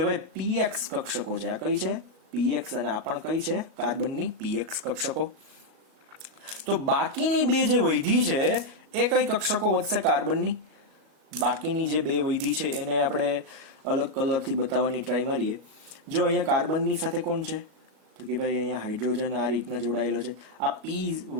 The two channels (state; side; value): late; left; 37 ms